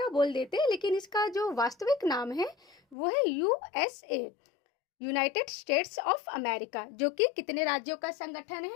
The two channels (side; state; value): right; drops out; at 3.0 s